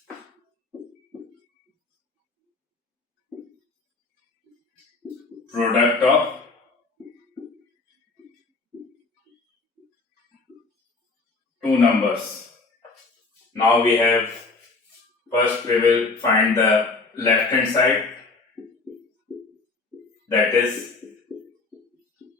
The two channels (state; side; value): quieter; right; 3.8 dB